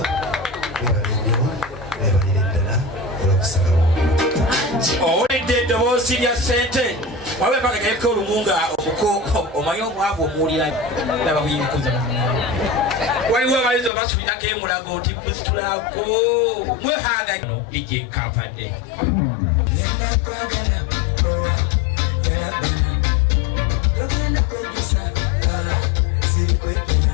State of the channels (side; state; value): right; drops out; at 13.9 s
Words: webale nnyo webalire ddala olw'okusalawo owulidde eddoboozi lya ssente wabe mpaka gayeko olumunga omuko omanyi omwavu omuwulira naba buyinkuza waliwo abayizi obasubirako emulago nti musitulako mwehanga ije kampadde